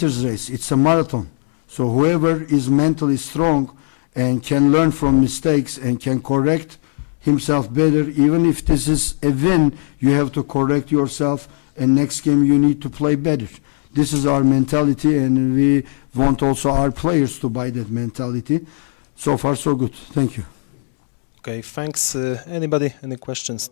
race, it's a marathon. So whoever is mentally strong and can learn from mistakes and can correct himself better. Even if this is a win, you have to correct yourself, and next game you need to play better. This is our mentality, and we want also our players to buy that mentality. So far, so good. Thank you. Okay, thanks. Anybody? Any questions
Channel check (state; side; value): silent; right; digital silence